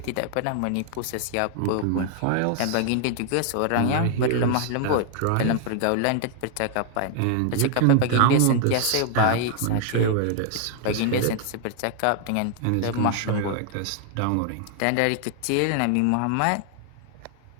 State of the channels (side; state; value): both; different; correlation 0.00